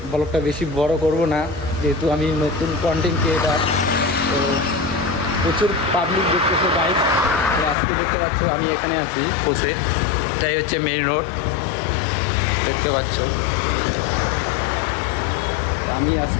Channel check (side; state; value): right; drops out; at 7.8 s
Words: ব্লগটা বেশি বড় করব না, যেহেতু আমি নতুন কন্টেন্ট ক্রিয়েটার। তো প্রচুর পাবলিক দেখতেছে গাইড। তো আজকে দেখতে পাচ্ছ আমি এখানে আছি বসে, এটাই হচ্ছে মেইন রোড, দেখতে পাচ্ছ। তো আমি